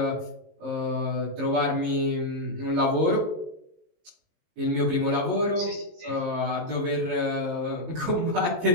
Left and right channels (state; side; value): late; left; 19 ms